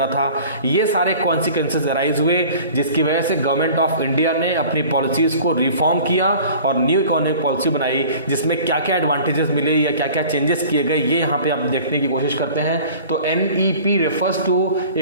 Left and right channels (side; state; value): both; inverted; correlation -0.45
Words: था, ये सारे कॉन्सिक्वेंसेस अराइज हुए, जिसकी वजह से गवर्नमेंट ऑफ इंडिया ने अपनी पॉलिसीज को रिफॉर्म किया और न्यू इकोनॉमिक पॉलिसी बनाई, जिसमें क्या क्या एडवांटेजेस मिले या क्या क्या चेंजेस किए गए, ये यहाँ पे आप देखने की कोशिश करते हैं। तो NEP refers to